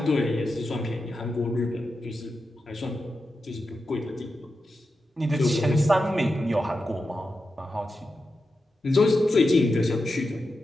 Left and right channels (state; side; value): normal; both; correlation 0.90